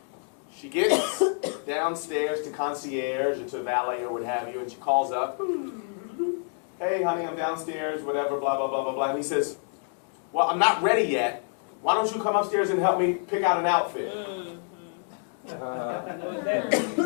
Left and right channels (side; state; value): right; silent; 60 dB below the other